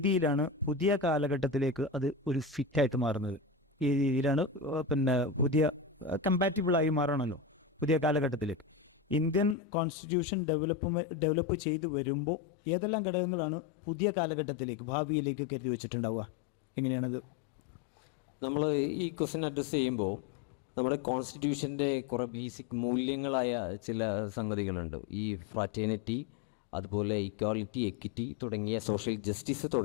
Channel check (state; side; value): drops out; right; at 9.6 s